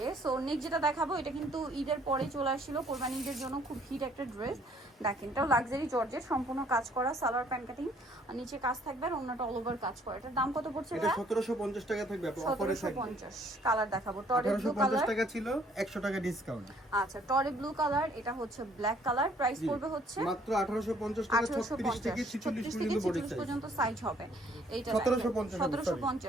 সো নেক্সট যেটা দেখাবো, এটা কিন্তু ঈদের পরে চলে আসছিল, কোরবানি ঈদের জন্য খুব হিট একটা ড্রেস। দেখেন এটাও লাক্সারি জর্জেট, সম্পূর্ণ কাজ করা, সালোয়ার প্যান্ট কাটিং, আর নিচে কাজ থাকবে, আর অন্যটা অল ওভার কাজ করা। এটার দাম কত পড়ছে? এটা 1750 টাকা থাকবে আপু, অফারে থাকবে। 1750। কালার দেখাবো, টরে ব্লু 1850 কালার, টাকা ছিল, 100 টাকা ডিসকাউন্ট। আচ্ছা টরে ব্লু কালার, এটা হচ্ছে ব্ল্যাক কালার। প্রাইস পড়বে হচ্ছে মাত্র 1850 টাকা। 36 থেকে 46 পর্যন্ত সাইজ হবে। এইটা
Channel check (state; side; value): normal; both; correlation 0.62